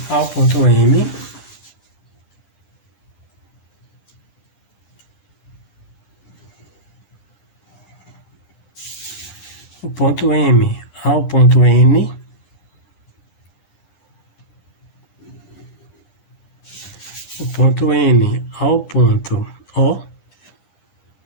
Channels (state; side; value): late; right; 9.9 ms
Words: ao ponto M, o ponto M ao ponto N, o ponto N ao ponto O